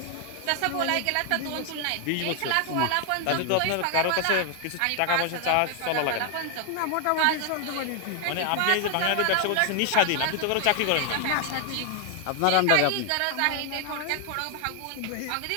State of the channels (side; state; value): both; different; correlation 0.00